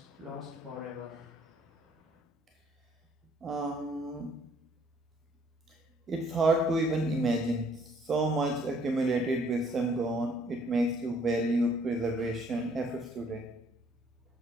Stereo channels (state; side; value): normal; both; correlation 0.63